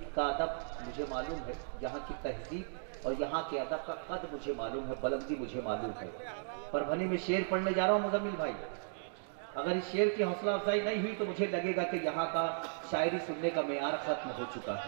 का अदब मुझे मालूम है, यहाँ की तहजीब और यहाँ के अदब का कद मुझे मालूम है, बुलंदी मुझे मालूम है। परभनी में शेर पढ़ने जा रहा हूँ मुजम्मिल भाई, अगर इस शेर की हौसला अफजाई नहीं हुई तो मुझे लगेगा कि यहाँ का शायरी सुनने का मेयार खत्म हो चुका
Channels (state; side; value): silent; left; digital silence